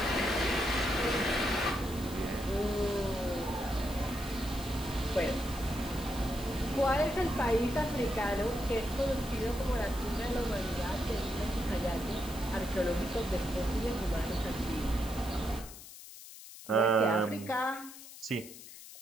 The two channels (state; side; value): noise; left; hiss, 15 dB below the sound